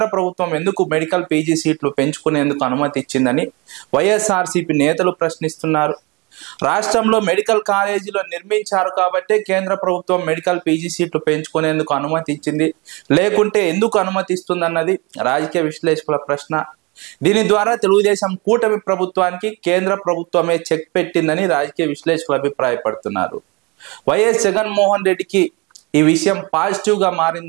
ప్రభుత్వం ఎందుకు మెడికల్ పీజీ సీట్లు పెంచుకునేందుకు అనుమతి ఇచ్చిందని వైఎస్ఆర్సీపీ నేతలు ప్రశ్నిస్తున్నారు. రాష్ట్రంలో మెడికల్ కాలేజీలు నిర్మించారు కాబట్టే కేంద్ర ప్రభుత్వం మెడికల్ పీజీ సీట్లు పెంచుకునేందుకు అనుమతి ఇచ్చింది, లేకుంటే ఎందుకు అనుమతిస్తుందన్నది రాజకీయ విశ్లేషకుల ప్రశ్న. దీని ద్వారా తెలుగుదేశం కూటమి ప్రభుత్వానికి కేంద్ర ప్రభుత్వమే చెక్ పెట్టిందని రాజకీయ విశ్లేషకులు అభిప్రాయపడుతున్నారు. వైఎస్ జగన్మోహన్ రెడ్డికి ఈ విషయం పాజిటివ్ గా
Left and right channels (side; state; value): left; quieter; 27.0 dB